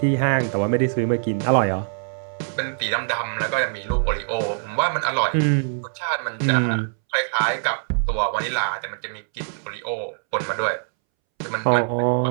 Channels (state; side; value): silent; left; 63 dB below the other